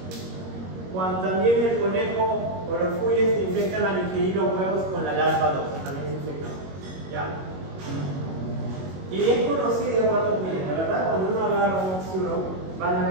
cuando también el conejo o los cuyes se infectan al ingerir los huevos con la larva 2, también se infectan. ¿Ya? Y es conocido cuando miren, la verdad, cuando uno agarra un occiuro, van a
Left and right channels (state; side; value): late; left; 21 ms